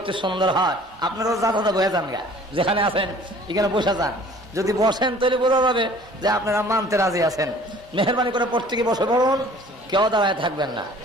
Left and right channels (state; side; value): normal; both; correlation 0.51